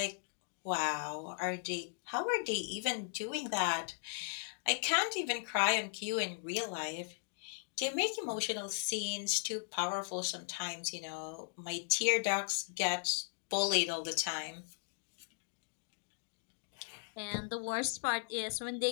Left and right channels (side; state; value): right; silent; digital silence